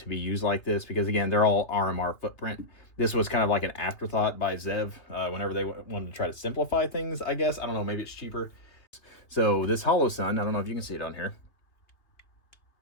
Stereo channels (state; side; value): late; right; 2.6 ms